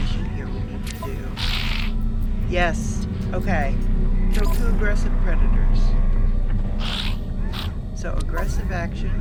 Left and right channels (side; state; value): both; identical; correlation 1.00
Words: here we need to do. Yes. Okay. Kill 2 aggressive predators. So aggressive action